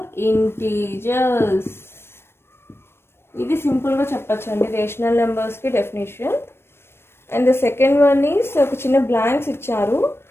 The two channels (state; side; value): late; right; 0.12 ms